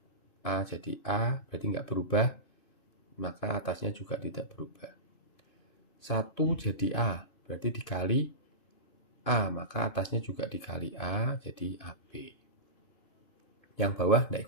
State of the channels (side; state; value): right; late; 2.5 ms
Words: A jadi A, berarti nggak berubah, maka atasnya juga tidak berubah. 1 jadi A, berarti dikali A, maka atasnya juga dikali A, jadi AB. Yang bawah nggak